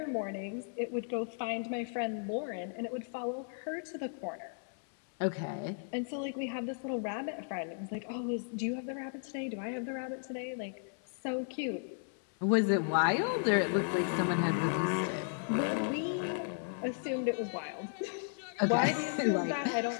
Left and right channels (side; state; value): right; silent; 55 dB below the other